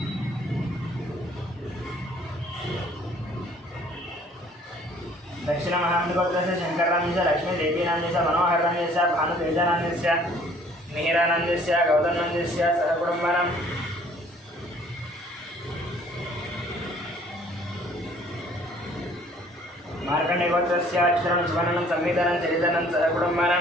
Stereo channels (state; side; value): normal; both; correlation 0.56